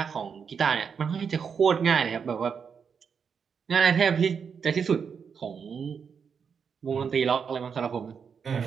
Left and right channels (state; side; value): quieter; left; 6.5 dB